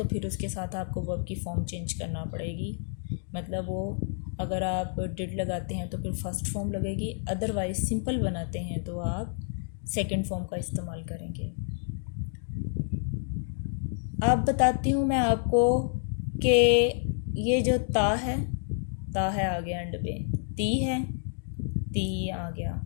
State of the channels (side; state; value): right; silent; 58 dB below the other